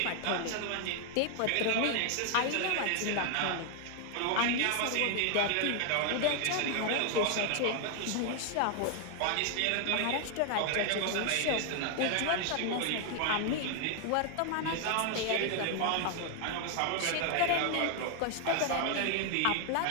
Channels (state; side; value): different; both; correlation 0.00